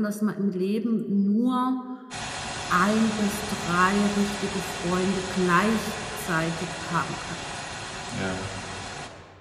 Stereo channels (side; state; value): both; identical; correlation 1.00